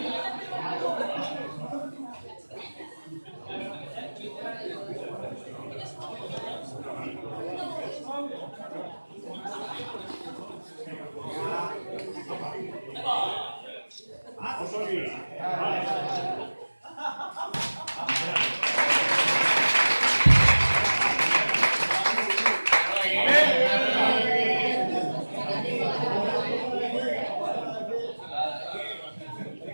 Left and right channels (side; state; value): both; inverted; correlation -1.00